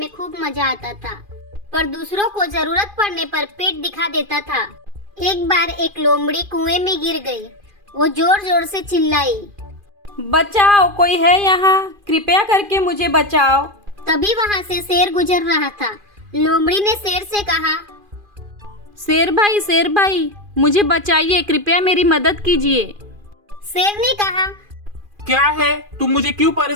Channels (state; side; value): late; left; 2.4 ms